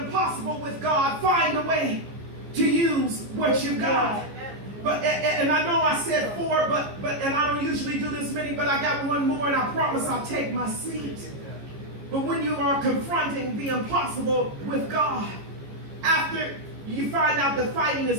impossible with God, find a way to use what you've got. But and I know I said 4, but and I don't usually do this many, but I got one more, and I promise I'll take my seat. But when you are confronting the impossible with God, after you find out that fighting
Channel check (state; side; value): late; left; 15 ms